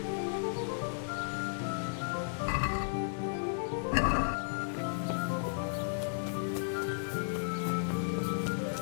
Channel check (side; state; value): right; silent; digital silence